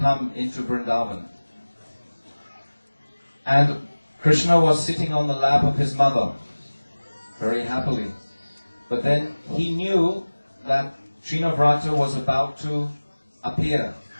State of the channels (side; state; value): both; inverted; correlation -1.00